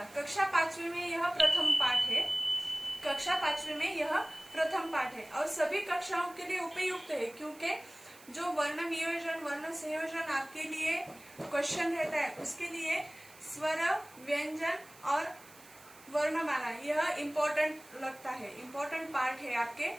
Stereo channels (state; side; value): noise; right; hiss, 22 dB below the sound